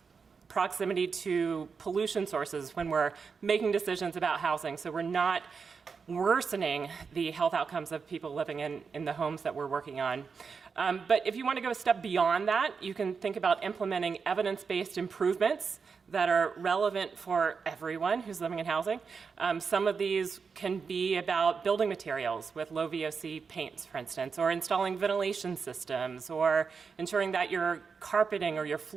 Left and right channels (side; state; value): left; quieter; 5.5 dB